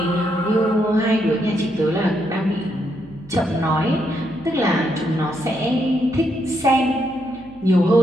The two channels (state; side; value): noise; left; hum, 25 dB below the sound